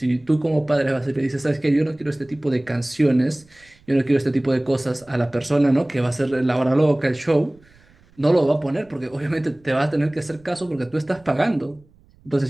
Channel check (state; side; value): noise; right; rumble, 29 dB below the sound